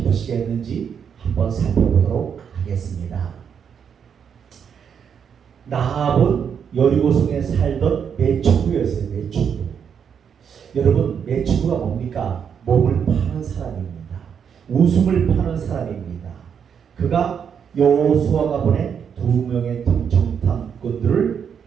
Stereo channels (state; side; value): quieter; left; 7.5 dB